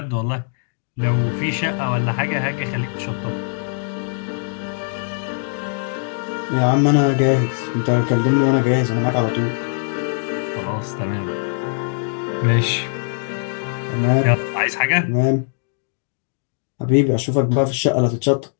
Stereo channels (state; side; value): silent; right; 65 dB below the other